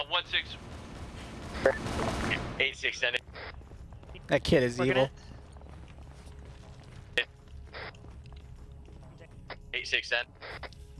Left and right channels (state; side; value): identical; both; correlation 1.00